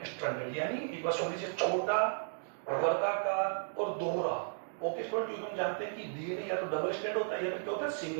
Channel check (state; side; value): silent; left; digital silence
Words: यानी एक बार सुन लीजिए, छोटा, वर्गाकार और दोहरा। ओके स्टूडेंट, क्योंकि हम जानते हैं कि डीएनए या तो डबल स्ट्रैंड होता है या फिर क्या होता है,